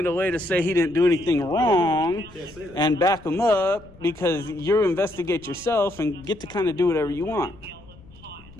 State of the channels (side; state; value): left; noise; rumble, 23 dB below the sound